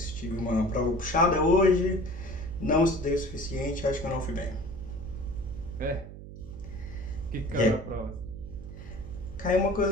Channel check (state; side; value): noise; right; hum, 13 dB below the sound